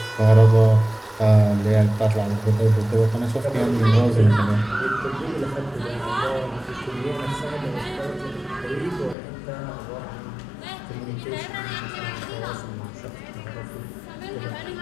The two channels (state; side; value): drops out; right; at 9.2 s